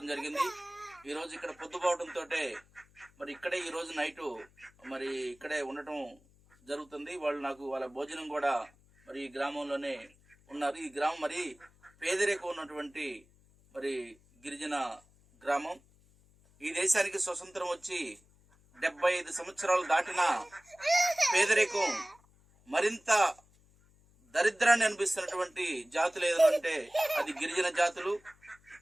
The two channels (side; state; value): left; noise; hum, 30 dB below the sound